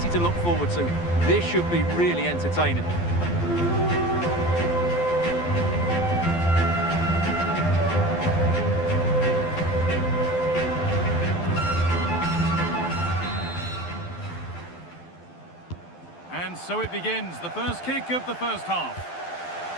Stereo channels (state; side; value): late; right; 12 ms